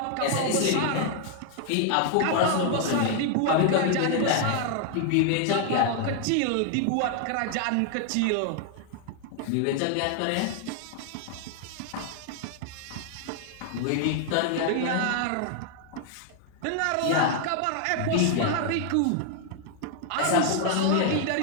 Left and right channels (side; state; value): both; different; correlation 0.00